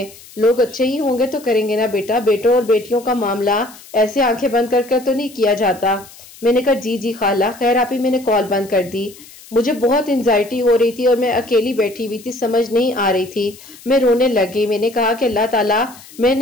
लोग अच्छे ही होंगे तो करेंगे ना बेटा, बेटों और बेटियों का मामला ऐसे आंखें बंद कर तो नहीं किया जाता। मैंने कहा जी जी खाला। खैर आप ही मैंने कॉल बंद कर दी। मुझे बहुत एंजाइटी हो रही थी और मैं अकेली बैठी हुई थी, समझ नहीं आ रही थी। मैं रोने लगी। मैंने कहा कि अल्लाह ताला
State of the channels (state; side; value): noise; left; hiss, 21 dB below the sound